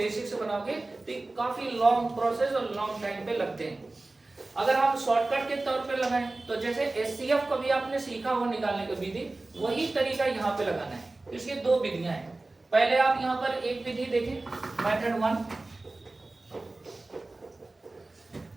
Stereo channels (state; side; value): quieter; left; 3.1 dB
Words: से बनाओगे तो काफी लॉन्ग प्रोसेस और लॉन्ग टाइम पे लगते हैं। अगर हम शॉर्टकट के तौर पे लगाएं तो जैसे एचसीएफ कभी आपने सीखा हो निकालने का विधि, वही तरीका यहाँ पे लगाना है। इसकी 2 विधियां हैं। पहले आप यहाँ पर एक विधि देखें, मेथड 1,